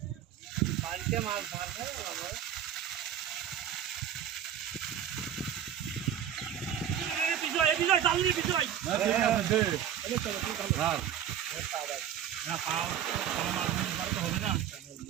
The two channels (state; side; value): quieter; left; 9.8 dB